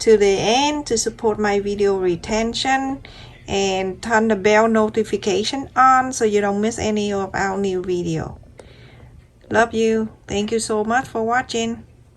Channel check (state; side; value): identical; both; correlation 1.00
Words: the end to support my video retention, and turn the bell notification on so you don't miss any of our new video. Love you. Thank you so much for watching.